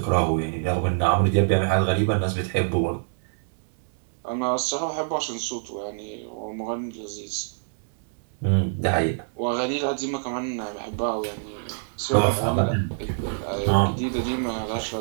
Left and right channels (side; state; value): left; silent; digital silence